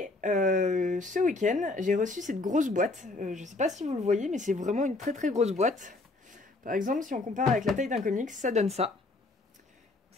ce week-end, j'ai reçu cette grosse boîte. Je ne sais pas si vous le voyez, mais c'est vraiment une très très grosse boîte. Par exemple, si on compare avec la taille d'un comics, ça donne ça.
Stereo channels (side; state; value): right; quieter; 3.1 dB